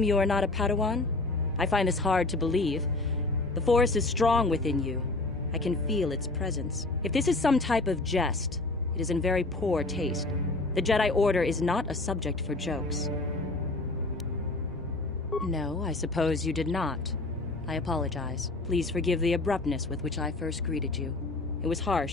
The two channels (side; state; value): right; quieter; 3.1 dB